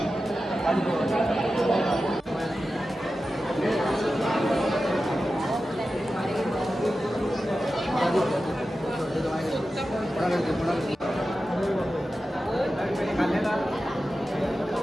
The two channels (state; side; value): normal; both; correlation 0.93